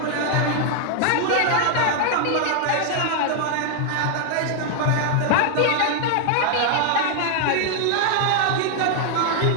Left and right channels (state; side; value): different; both; correlation 0.00